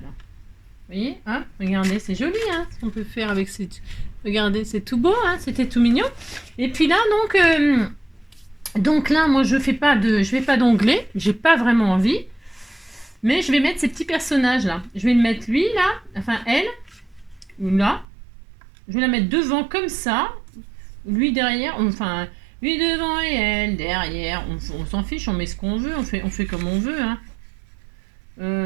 là. Vous voyez, hein, regardez, c'est joli, hein, ce qu'on peut faire avec ces... Regardez, c'est tout beau, hein, c'était tout mignon. Et puis là, donc là, moi, je vais pas d'onglet, j'ai pas vraiment envie. Mais je vais mettre ces petits personnages là. Je vais le mettre lui là, enfin elle, ou là. Je vais la mettre devant comme ça. Lui derrière, enfin, lui devant et elle derrière. On s'en fiche, on met ce qu'on veut, on fait comme on veut, hein.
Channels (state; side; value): drops out; left; at 18.1 s